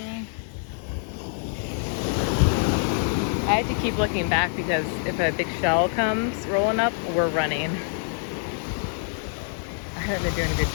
I had to keep looking back because if a big shell comes rolling up, we're running. I haven't been doing a good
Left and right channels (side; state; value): right; silent; 61 dB below the other